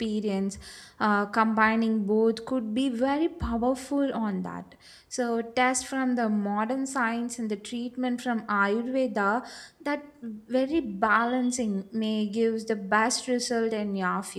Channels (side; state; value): both; identical; correlation 1.00